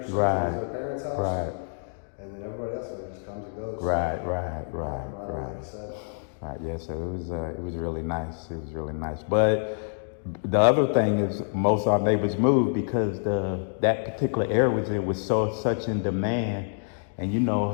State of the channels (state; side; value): silent; right; digital silence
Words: since Right. it was their parents' house. Right. And then everybody else just comes and goes. Right. Like I said. Right, yeah, so it was really nice. It was really nice. But the other thing is most of our neighbors moved because that particular area was such in demand, and you